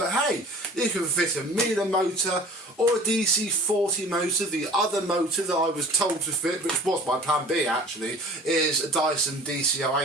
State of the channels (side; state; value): both; normal; correlation 0.44